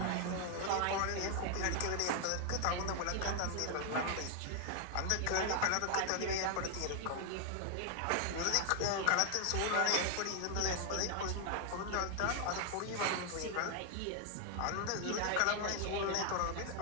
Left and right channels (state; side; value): different; both; correlation 0.00